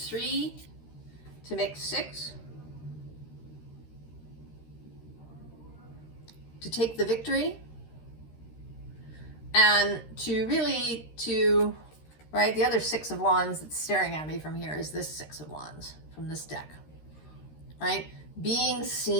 to make 6. To take the victory. And to really, right, the other 6 of Wands that's staring at me from here is this 6 of Wands from this deck. Right? Being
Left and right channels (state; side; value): late; right; 13 ms